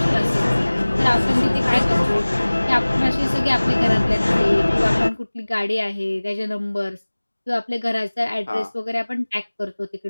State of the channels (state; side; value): inverted; both; correlation -1.00